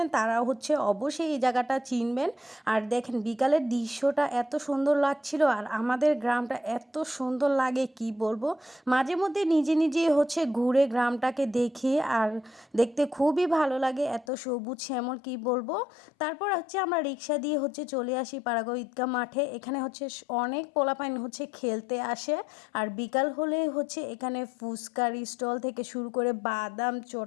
তারা হচ্ছে অবশ্যই এই জায়গাটা চিনবেন। আর দেখেন বিকালের দৃশ্যটা এত সুন্দর লাগছিল আর আমাদের গ্রামটা এত সুন্দর লাগে কি বলবো। মাঝে মধ্যে নিজে নিজে হচ্ছে ঘুরে গ্রামটাকে দেখি আর দেখতে খুবই ভালো লাগে, এত সবুজ শ্যামল কি বলবো। তারপর হচ্ছে আমরা রিক্সা দিয়ে হচ্ছে চলে আসি পাড়াগাঁও ঈদগাহ মাঠে। এখানে হচ্ছে অনেক পোলাপাইন হচ্ছে খেলতে আসে আর বিকাল হলে হচ্ছে এখানে ফুচকার স্টল থেকে শুরু করে বাদাম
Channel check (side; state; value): right; drops out; at 14.2 s